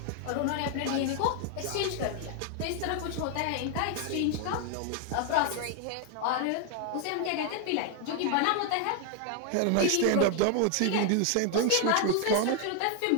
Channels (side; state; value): both; different; correlation 0.00